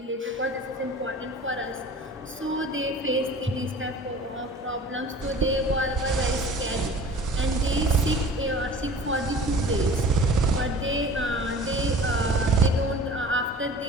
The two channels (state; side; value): normal; both; correlation 0.43